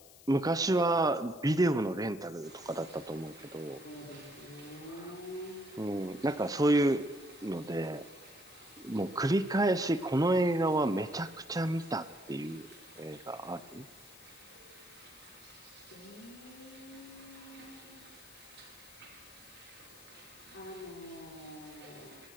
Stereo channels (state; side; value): noise; left; hiss, 21 dB below the sound